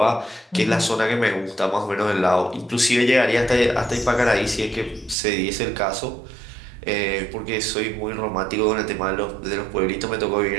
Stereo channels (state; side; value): drops out; left; at 5.2 s